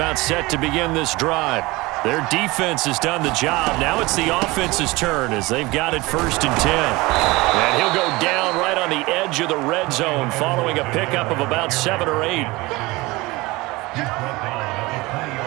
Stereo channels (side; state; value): left; quieter; 22.0 dB